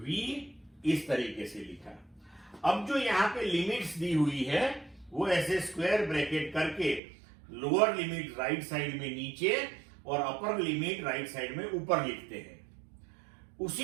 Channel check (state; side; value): drops out; left; at 7.0 s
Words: इस तरीके से लिखा। अब जो यहां पे लिमिट्स दी हुई है वो ऐसे स्क्वायर ब्रैकेट करके लोअर लिमिट राइट साइड में नीचे और अपर लिमिट राइट साइड में ऊपर लिखते हैं।